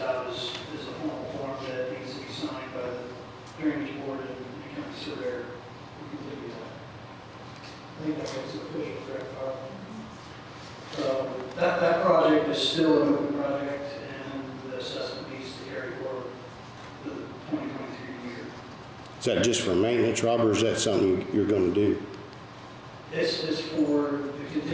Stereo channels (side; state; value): both; identical; correlation 1.00